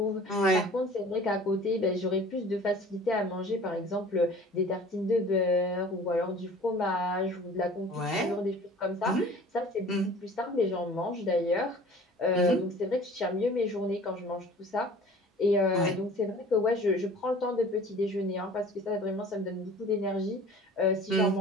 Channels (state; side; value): normal; both; correlation 0.46